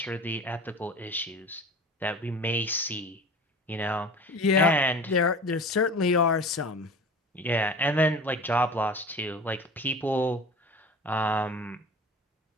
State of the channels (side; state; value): both; normal; correlation 0.38